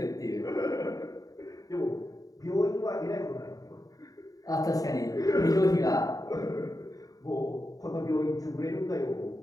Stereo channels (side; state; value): right; late; 0.17 ms